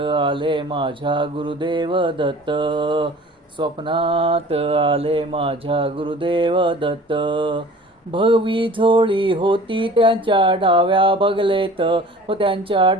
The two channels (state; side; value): normal; both; correlation 0.45